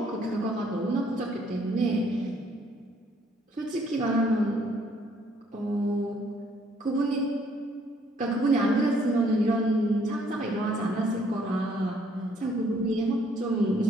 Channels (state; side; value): normal; both; correlation 0.65